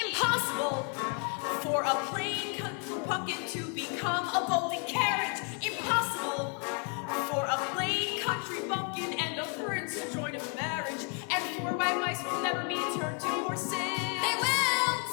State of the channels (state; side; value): quieter; right; 38.7 dB